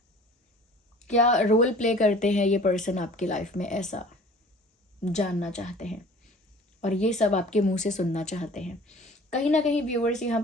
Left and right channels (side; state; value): both; normal; correlation 0.47